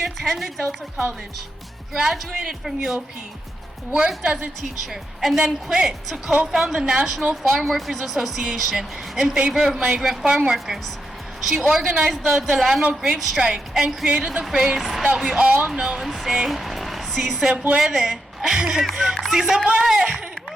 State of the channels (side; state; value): both; normal; correlation 0.84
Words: attended Delta College, graduated from UOP, worked as a teacher, and then quit to co-found the National Farm Workers Association in favor of migrant farm workers. She organized the Delano grape strike and created the phrase that we all know and say, "Si se puede." Si se puede!